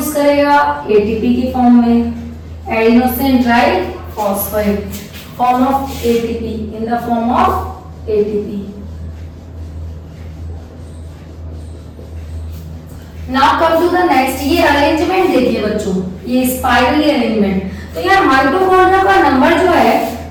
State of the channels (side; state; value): both; identical; correlation 1.00